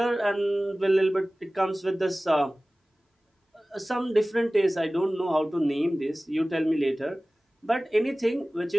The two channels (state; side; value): normal; both; correlation 0.98